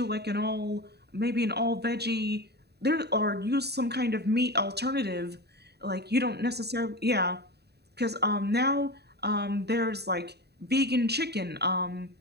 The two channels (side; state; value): left; late; 0.48 ms